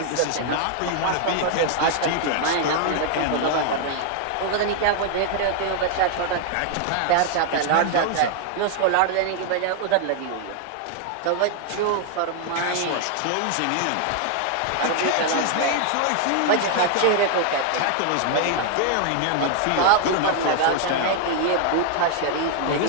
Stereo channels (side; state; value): both; different; correlation 0.00